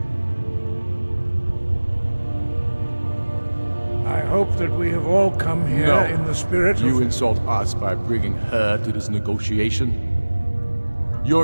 I hope that we have all come here in the spirit of... You insult us by bringing her to this negotiation?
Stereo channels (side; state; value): both; inverted; correlation -1.00